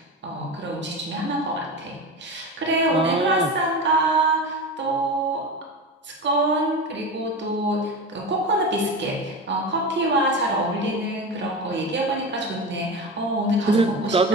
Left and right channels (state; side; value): normal; both; correlation 0.25